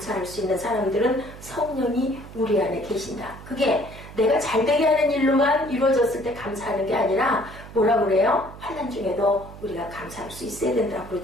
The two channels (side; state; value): right; noise; hum, 16 dB below the sound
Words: 수 있는 사람들은 성령이 우리 안에 계신다. 그게 내가 잘되게 하는 일로만 이루어졌을 때 감사하는 게 아니라 뭐라 그래요? 환난 중에도 우리가 감사할 수 있어야 된다고